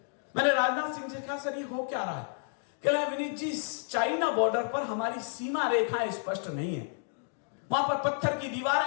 मैंने राजनाथ सिंह से कहा, सर ये हो क्या रहा है? कह रहे विनीत जी, चाइना बॉर्डर पर हमारी सीमा रेखाएं स्पष्ट नहीं है। वहां पर पत्थर की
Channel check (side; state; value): right; silent; digital silence